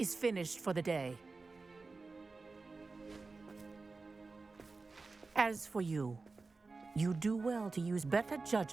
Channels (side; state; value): left; quieter; 3.9 dB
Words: finished for the day. As for you, you do well to use better